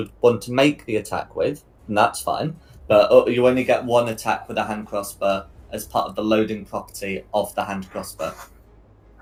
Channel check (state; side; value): identical; both; correlation 1.00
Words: want to make the attack with, and that's fine. But you only get 1 attack with a hand crossbow as part of the loading property of the hand crossbow.